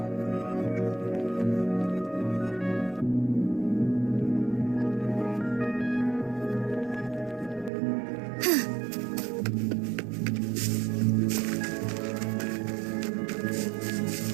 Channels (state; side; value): drops out; left; at 7.7 s